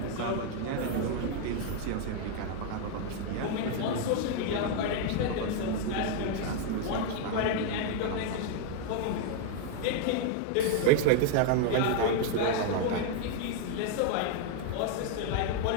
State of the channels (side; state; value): both; different; correlation 0.00